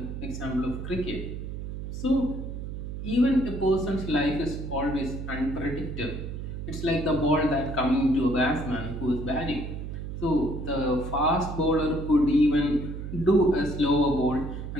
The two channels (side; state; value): right; noise; hum, 7 dB below the sound